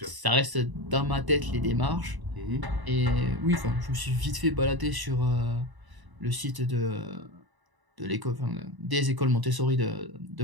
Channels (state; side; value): late; left; 1.0 ms